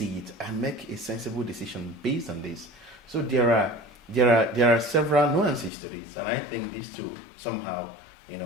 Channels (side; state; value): right; drops out; at 5.7 s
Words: it and make a sensible decision based on this. So there are several nuances to this, and I think this too somehow